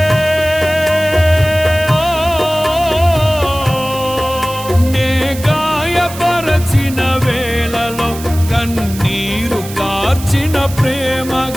నే గాయపరచిన వేళలో కన్నీరు కార్చిన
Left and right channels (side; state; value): right; noise; hiss, 14 dB below the sound